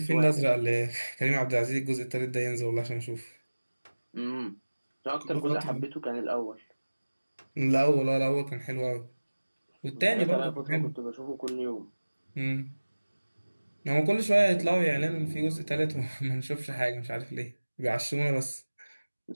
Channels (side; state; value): both; inverted; correlation -1.00